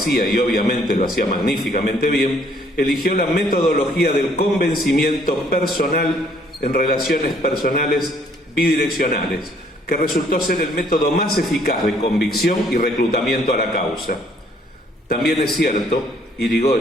y obviamente lo hacía magníficamente bien, eligió la metodología del convencimiento personal en relaciones personales bidireccionales, que resultó ser el método más eficaz de convicción y reclutamiento a la causa. También es cierto,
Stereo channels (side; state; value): both; normal; correlation 0.63